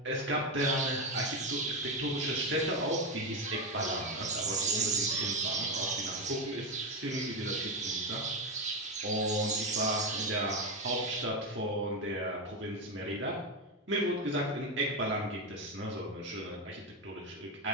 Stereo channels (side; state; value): both; normal; correlation 0.11